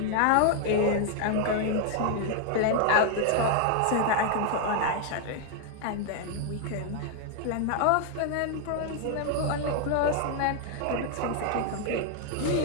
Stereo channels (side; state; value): both; different; correlation 0.00